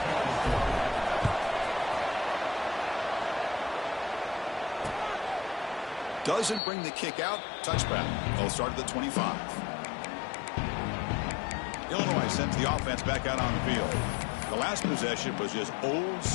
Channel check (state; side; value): drops out; right; at 6.6 s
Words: Doesn't bring the kick out. Touchback. They'll start at the 25. Illinois sends the offense back out on the field. The last possession was just old